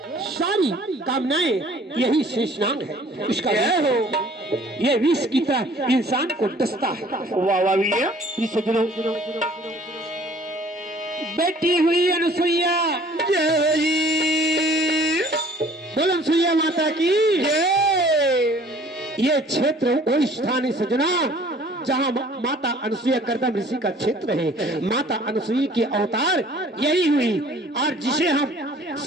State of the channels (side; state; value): both; normal; correlation 0.54